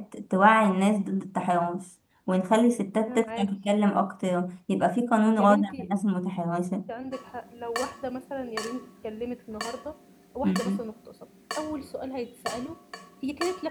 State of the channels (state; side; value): identical; both; correlation 1.00